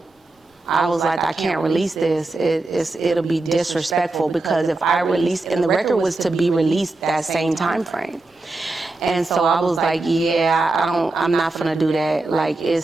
I was like, I can't release this. It'll be disrespectful, because if I release, and the record was to be released that same time frame. And so I was like, yeah, I'm not gonna do that. Like,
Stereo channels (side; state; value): left; quieter; 3.1 dB